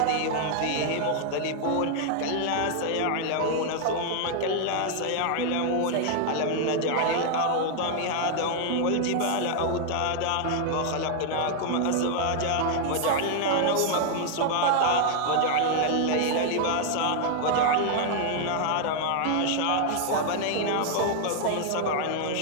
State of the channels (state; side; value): different; both; correlation 0.00